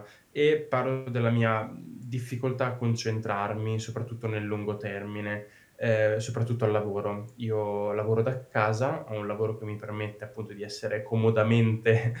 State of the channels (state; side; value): identical; both; correlation 1.00